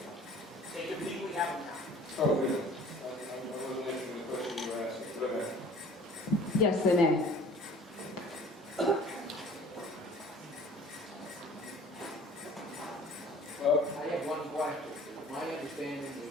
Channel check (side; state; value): both; normal; correlation 0.49